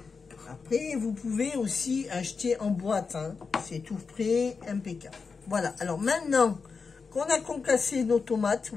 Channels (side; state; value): right; quieter; 5.0 dB